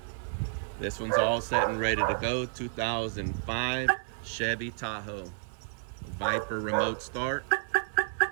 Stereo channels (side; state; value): left; silent; 57 dB below the other